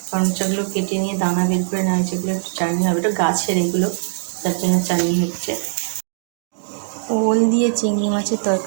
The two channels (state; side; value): silent; left; 63 dB below the other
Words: করমচাগুলো কেটে নিয়ে দানা বের করে নেওয়া হয়েছে, এগুলো একটু চাটনি হবে। এটা গাছের এগুলো, তার জন্য চাটনি হচ্ছে। ওল দিয়ে চিংড়ি মাছের